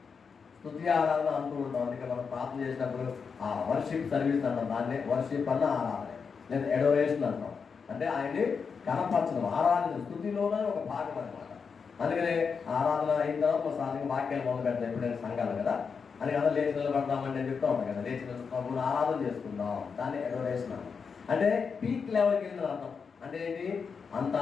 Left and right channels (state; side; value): quieter; right; 5.7 dB